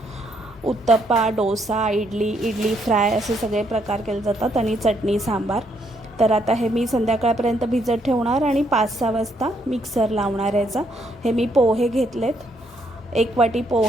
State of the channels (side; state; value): both; normal; correlation 0.73